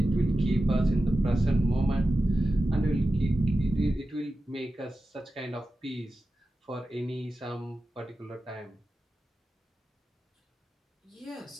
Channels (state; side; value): normal; both; correlation 0.93